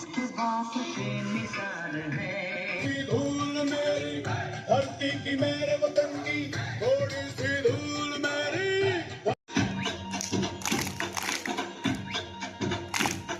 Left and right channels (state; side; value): identical; both; correlation 1.00